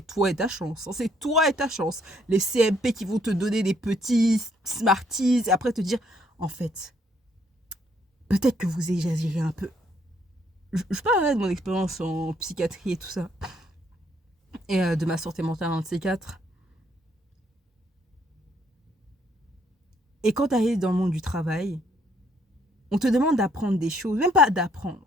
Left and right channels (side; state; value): both; normal; correlation 0.68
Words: toi et ta chance. Hein. C'est toi et ta chance. Les CMP qui vont te donner des petits Smarties et après te dire, en fait, peut-être que vous exagérez un peu. Je parlerai de mon expérience en psychiatrie et tout ça. Et de ma santé mentale, un de ces quatre. Et quand tu arrives dans le monde du travail, on te demande d'apprendre des choses, même pas